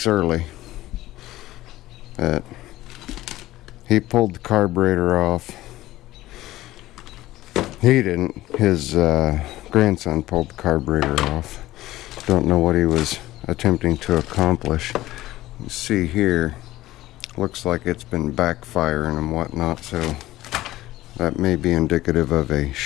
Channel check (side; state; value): right; quieter; 16.3 dB